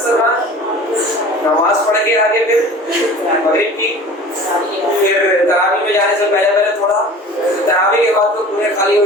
نماز پڑھ کے آگے پھر مغرب کی، پھر تراویح میں جانے سے پہلے تھوڑا، تراویح کے بعد تو پورے خالی ہو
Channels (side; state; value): both; normal; correlation 0.41